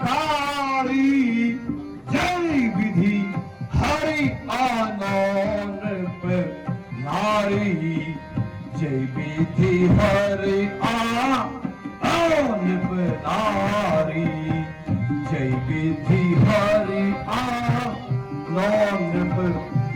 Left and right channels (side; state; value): both; identical; correlation 1.00